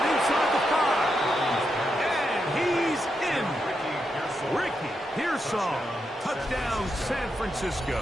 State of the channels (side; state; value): both; normal; correlation 0.84